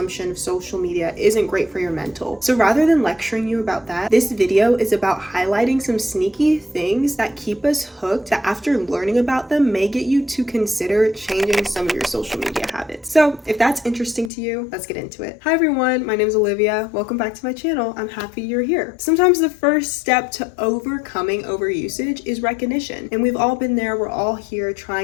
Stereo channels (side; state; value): right; drops out; at 14.3 s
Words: of social media isn't great for your mental. So rather than lecturing you about that, this video is about highlighting some sneaky things that keep us hooked that after learning about them may get you to consider changing some of your social media habits. So if that's interesting to you, let's get into it. Hi everyone, my name is Olivia. Welcome back to my channel. I'm happy you're here. Sometimes the first step to overcoming overusage is recognition. And we've all been there. We're all here